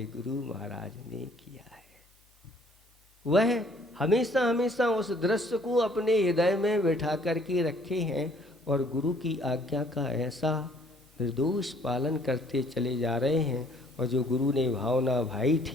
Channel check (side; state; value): both; normal; correlation 0.60